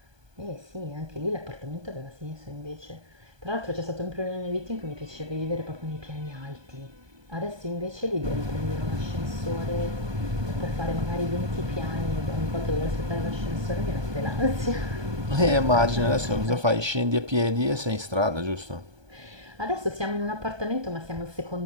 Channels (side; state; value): left; late; 1.2 ms